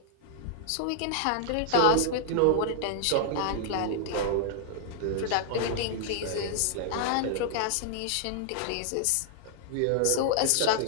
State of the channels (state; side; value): different; both; correlation -0.01